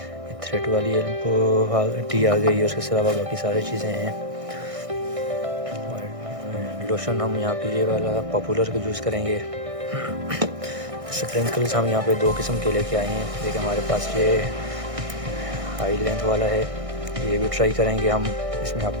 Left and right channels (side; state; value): left; late; 1.6 ms